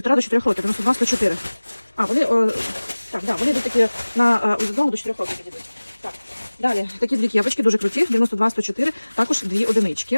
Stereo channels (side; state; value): both; inverted; correlation -1.00